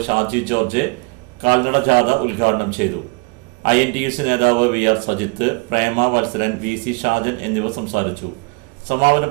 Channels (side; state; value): left; quieter; 28.8 dB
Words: ഷാജി ജോർജ് കാൽനട ജാഥ ഉദ്ഘാടനം ചെയ്തു. INTUC നേതാവ് VR സജിത്ത്, പ്രേമ വത്സരൻ, VC ഷാജൻ എന്നിവർ സംസാരിച്ചു. സമാപന